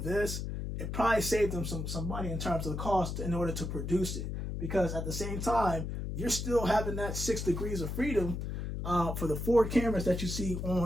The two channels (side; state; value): left; noise; hum, 4 dB below the sound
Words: this, it probably saved them some money in terms of the cost in order to produce it. Because at the same time, you're still having that 6 degrees of freedom for the 4 cameras that you see